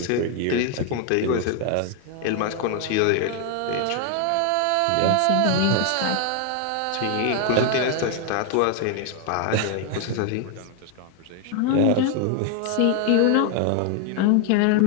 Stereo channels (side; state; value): both; different; correlation 0.00